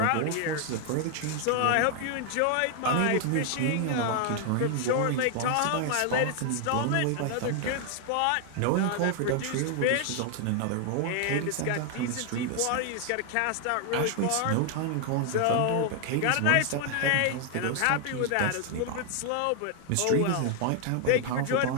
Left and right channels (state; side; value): different; both; correlation 0.00